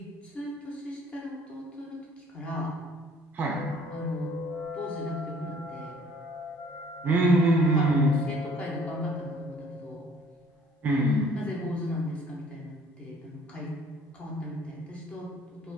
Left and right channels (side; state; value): both; normal; correlation 0.56